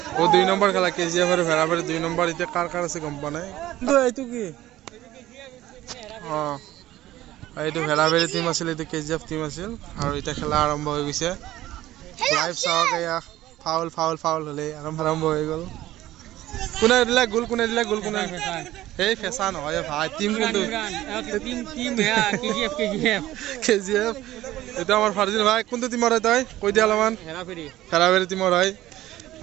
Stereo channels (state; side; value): quieter; left; 15.0 dB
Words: ও 2 নম্বৰ খেলা KGF আৰু ভেৰাবাৰী 2 নম্বৰ এতিয়া কাৰ আছে গম পোৱা নাই এইটো কি এইটো ভেৰাবাৰী টিম আছিল এইটো KGF টিম আছিল আৰু এতিয়া খেলা আৰম্ভ হৈ গৈছে লাইভ চাওক এয়া ফাউল হ'লে আৰম্ভ হৈ গ'ল কোনে দিলে গোল কোনে এই ফেঁচা নহয় ভাই টিম কিন্তু KGF এইটো আমাৰ ফাৰ্জিন ভাই কোনটো টিমৰ হয় তই কৈ দিয়া অলপমান ভেৰাবাৰী টিমৰ হয়